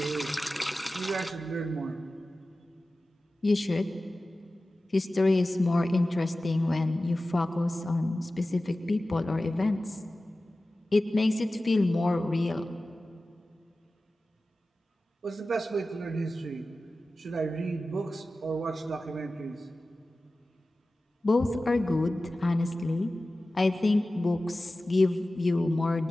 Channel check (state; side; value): normal; both; correlation 0.95